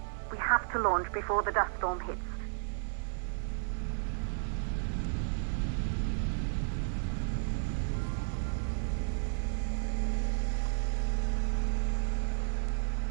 We have to launch before the dust storm hits.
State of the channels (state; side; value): silent; left; 56 dB below the other